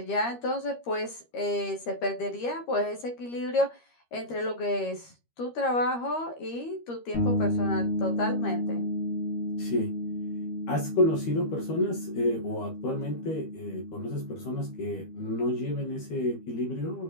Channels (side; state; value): right; late; 13 ms